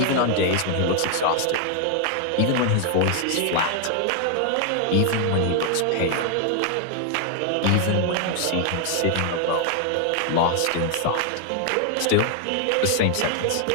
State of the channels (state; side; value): different; both; correlation 0.00